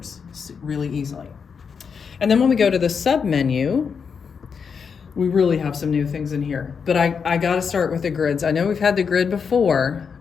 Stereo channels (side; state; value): right; quieter; 6.2 dB